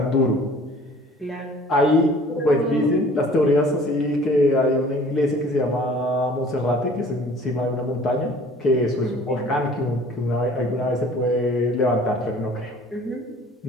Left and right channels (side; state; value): both; normal; correlation 0.50